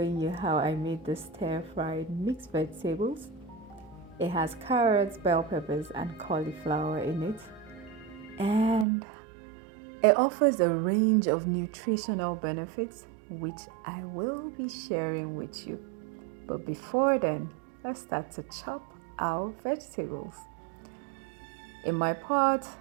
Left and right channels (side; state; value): left; drops out; at 8.8 s